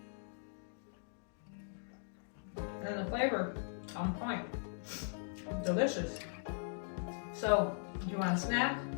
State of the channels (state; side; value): silent; right; digital silence